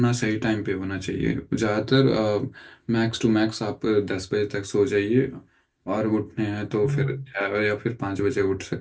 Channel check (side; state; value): both; identical; correlation 1.00